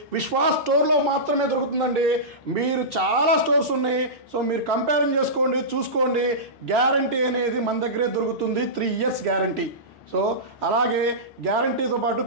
విశ్వాస్ స్టోర్లో మాత్రమే దొరుకుతుందండి. మీరు చాలా స్టోర్స్ ఉన్నాయి, సో మీరు కంపేరింగ్ చేసుకోండి, చూసుకోండి. గ్యారంటీ అనేది మన దగ్గరే దొరుకుతుంది. 3 years గ్యారంటీ. సో అలాగే గ్యారంటీతో పాటు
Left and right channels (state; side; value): normal; both; correlation -0.18